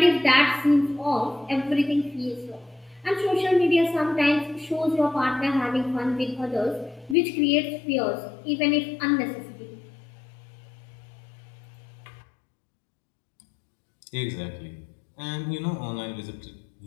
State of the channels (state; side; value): drops out; right; at 7.2 s